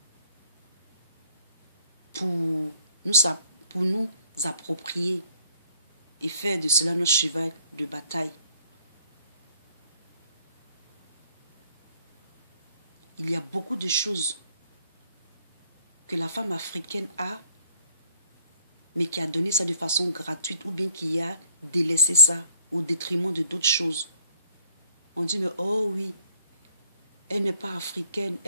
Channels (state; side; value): inverted; both; correlation -0.62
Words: pour pour nous approprier et faire de cela notre cheval de bataille. Il y a beaucoup de choses que la femme africaine a, mais qui a donné ça de façon gratuite ou bien qui a délaissé ça au détriment de d'autres choses. On dit, mais oh oui, elle n'est pas africaine,